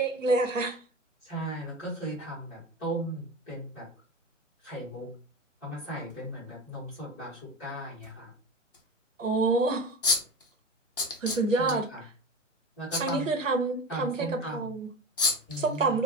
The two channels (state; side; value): normal; both; correlation 0.28